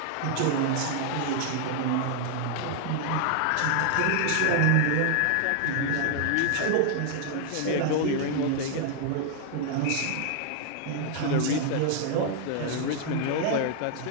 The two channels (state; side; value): different; both; correlation 0.00